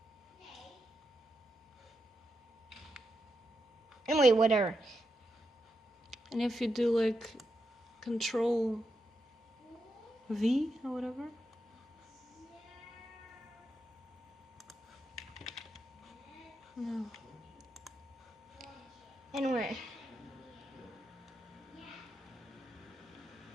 Anyway, whatever. And if you do like Control V or whatever. No. Anyway.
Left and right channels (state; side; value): normal; both; correlation 0.85